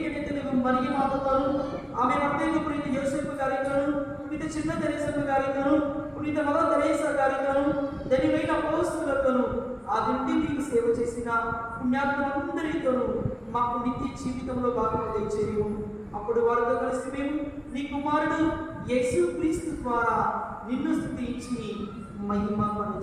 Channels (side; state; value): both; identical; correlation 1.00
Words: నిత్యము మరియు మాతతోను, ఆమె భర్తకు పునీత యోసేపు గారితోను, పునీత చిన్న తెరేసమ్మ గారితోను, పునీత మదర్ తెరేసా గారితోను, ధన్యమైన అపోస్తలులతోను, ఆ దింటి మీకు సేవ చేసిన పుణ్యాత్మలందరితోనూ మాకు నిత్య జీవితంలో భాగంగా దయచేయము. అప్పుడు వారితో కలిసి మేము నీ కుమారుడు యేసు క్రీస్తు ద్వారా నిన్ను స్తుతించి మహిమ